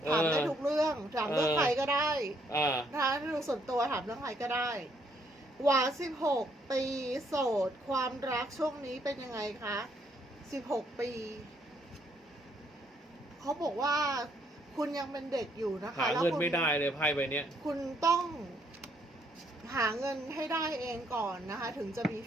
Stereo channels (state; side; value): normal; both; correlation 0.70